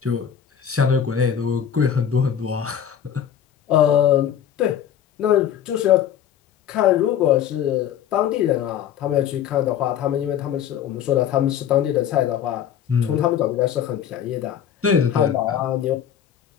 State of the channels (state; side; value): quieter; right; 9.3 dB